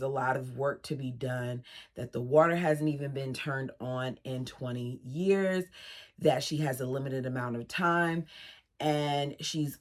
lot of work to be done, that the water hasn't even been turned on in 20 years, that she has a limited amount of time, and she's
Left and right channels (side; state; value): both; identical; correlation 1.00